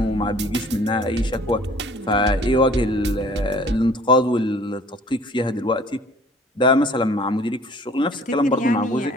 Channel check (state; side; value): normal; both; correlation 0.52